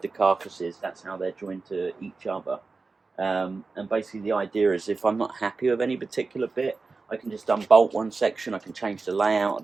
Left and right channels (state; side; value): quieter; left; 4.0 dB